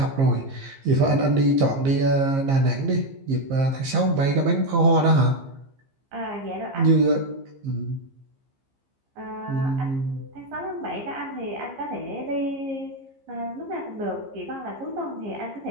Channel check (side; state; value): left; late; 15 ms